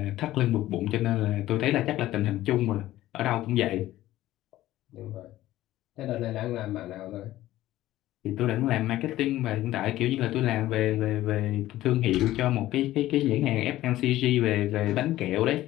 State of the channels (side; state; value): right; quieter; 15.1 dB